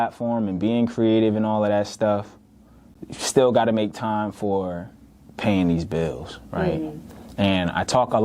and being creative and all of that stuff, you still got to make time for paying these bills, right? Mm-hmm. And I talk a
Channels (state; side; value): identical; both; correlation 1.00